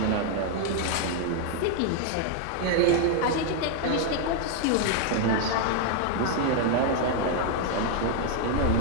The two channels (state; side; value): different; both; correlation 0.00